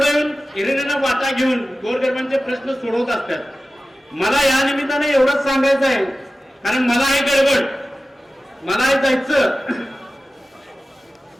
येऊन हिरिरीनं वाटा घेऊन गोरगरिबांचे प्रश्न सोडवत असतात. मला या निमित्ताने एवढंच सांगायचं आहे, कारण मला आहे गडबड, मला आहे जायचं.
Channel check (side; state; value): both; normal; correlation 0.95